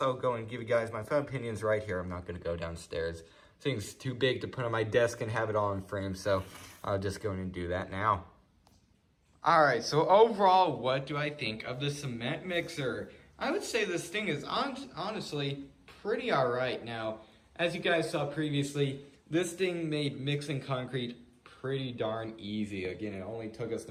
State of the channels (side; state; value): both; identical; correlation 1.00